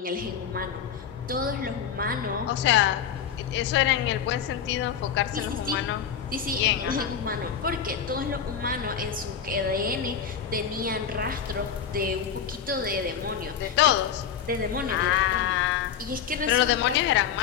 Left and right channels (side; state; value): right; quieter; 8.0 dB